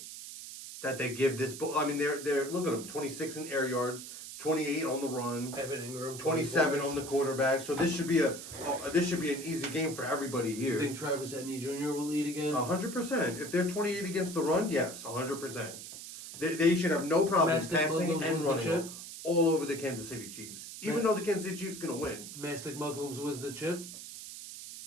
that they give this. I mean, they're look at them: 26 in air yards, 28 on the run, Evan Ingram, 27 on the quarterback. So this should be an easy game for everybody You here. think Travis Etienne Jr. will lead again? 100%. If they're 28 against the run, yes, 100%. They should have no problem Mastic passing Muslims and wins the running chip? all over the Kansas City Chiefs. Even though the Kansas City Chiefs going to win. Mastic Muslims wins the chip.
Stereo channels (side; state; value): right; noise; hiss, 11 dB below the sound